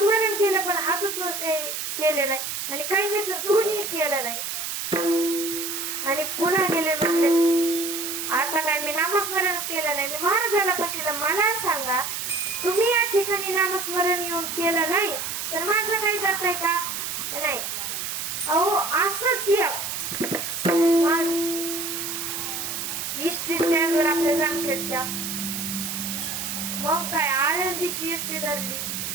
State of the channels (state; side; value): noise; right; hiss, 4 dB below the sound